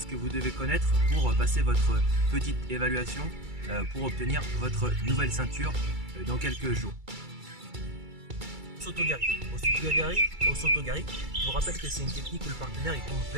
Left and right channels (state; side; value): late; left; 2.3 ms